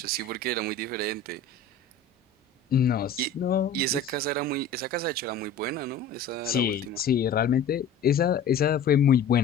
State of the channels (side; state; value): right; quieter; 4.6 dB